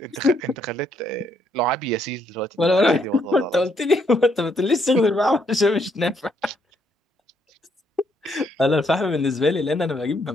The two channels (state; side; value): normal; both; correlation 0.72